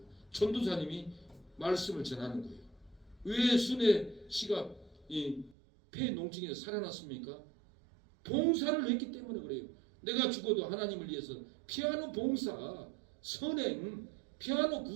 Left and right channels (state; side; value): drops out; left; at 5.6 s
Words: 전도사님이 말씀을 전하는 거예요. 왜 순애 씨가 이 폐농증에서 살아났습니까? 봉사를 했기 때문에 그래요. 내가 죽어도 하나님을 위해서 피아노 봉사, 선행, 피아노